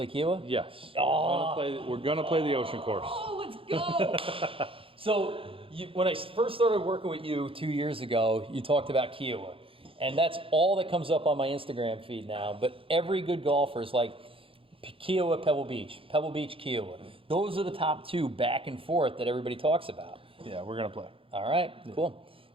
Kiowa? Yes. Oh. We're going to play the ocean course. Oh, let's go. So when I first started working with you 2 years ago, you talked about Kiowa. And that's all that comes up on my Instagram feed now. But every good golfer is like Kiowa, Pebble Beach, Kiowa. Those are the top 2 back and forth that everybody talks about. Yeah, we're going to play. All right, cool.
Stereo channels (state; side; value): late; left; 0.26 ms